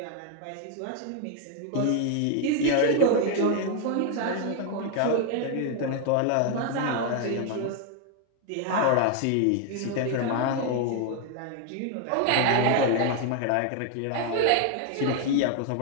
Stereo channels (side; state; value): both; different; correlation 0.01